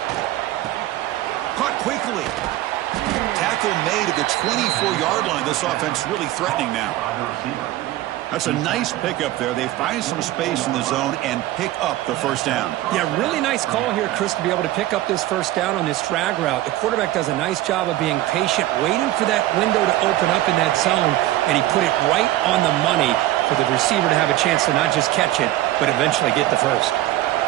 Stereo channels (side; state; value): left; quieter; 15.3 dB